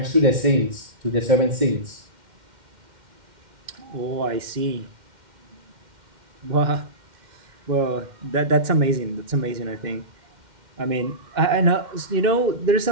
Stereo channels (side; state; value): left; late; 2.1 ms